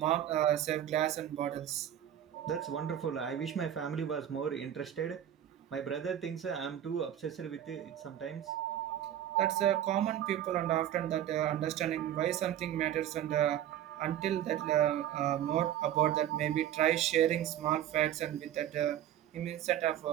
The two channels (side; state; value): left; quieter; 11.0 dB